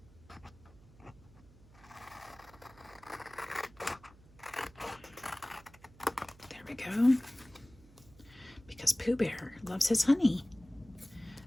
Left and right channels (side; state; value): right; noise; hum, 24 dB below the sound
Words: there we go. Because Pooh Bear loves his honey.